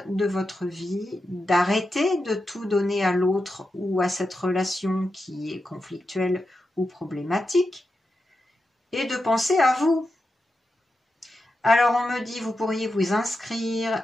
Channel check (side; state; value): both; normal; correlation 0.89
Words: de votre vie, d'arrêter de tout donner à l'autre ou à cette relation qui est conflictuelle ou problématique, et de penser à vous. Alors on me dit, vous pourriez vous inscrire